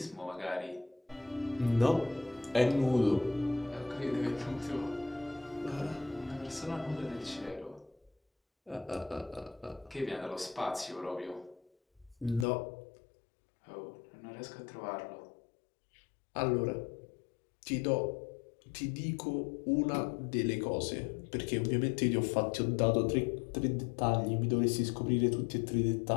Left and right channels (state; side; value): drops out; right; at 12.5 s